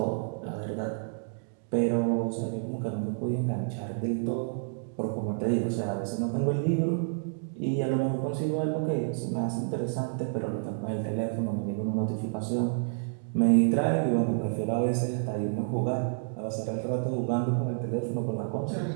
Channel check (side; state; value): left; silent; digital silence